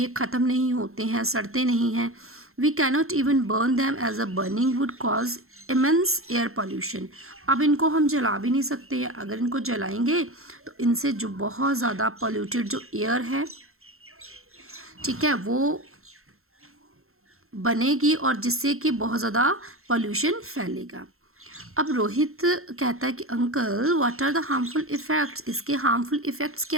ख़त्म नहीं होते हैं, सड़ते नहीं हैं. We cannot even burn them as a burning wood cause immense air pollution. अब इनको हम जला भी नहीं सकते, अगर इनको जलाएंगे तो इनसे जो बहुत ज़्यादा पॉल्यूटेड जो एयर है, ठीक है, वो बनेगी और जिससे कि बहुत ज़्यादा पॉल्यूशन फैलेगा. अब रोहित कहता है कि uncle what are the harmful effects, इसके हार्मफुल इफ़ेक्ट्स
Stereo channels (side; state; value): left; late; 0.62 ms